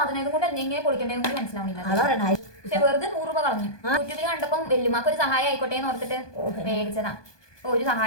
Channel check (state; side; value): late; right; 1.2 ms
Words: ഇതുകൊണ്ട് എന്തെങ്കിലും പൊളിക്കണ്ടേന്ന് മനസ്സിലാവുന്നില്ല. അതാണ് പക്ഷെ വെറുതെ 100 രൂപ കളഞ്ഞു. യൂട്യൂബിൽ കണ്ടപ്പം വെല്ലുമാക്ക് ഒരു സഹായം ആയിക്കോട്ടെ എന്ന് ഓർത്തിട്ട് മേടിച്ചതാ. ഒരു